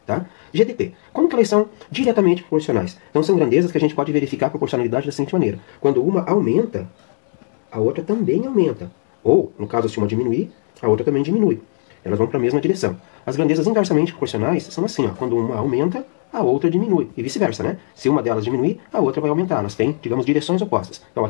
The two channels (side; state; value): right; silent; digital silence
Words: tá? GDP, como que elas são diretamente proporcionais? Então, são grandezas que a gente pode verificar a proporcionalidade da seguinte maneira. Quando uma aumenta, a outra também aumenta. Ou, no caso, se uma diminuir, a outra também diminui. Elas vão para a mesma direção. As grandezas inversamente proporcionais são assim, ó. Quando uma aumenta, a outra diminui. E vice-versa, né? Se uma delas diminuir, a outra vai aumentar. Elas têm, digamos, direções opostas. Então,